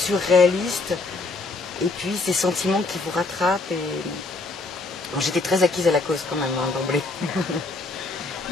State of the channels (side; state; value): right; quieter; 3.6 dB